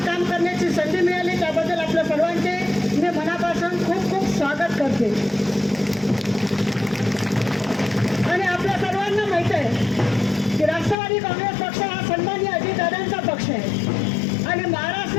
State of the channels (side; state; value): right; drops out; at 11.0 s